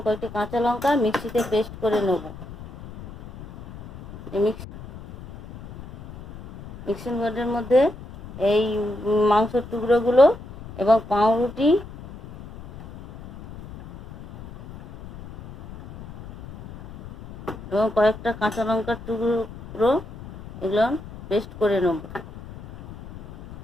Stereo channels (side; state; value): left; noise; rumble, 16 dB below the sound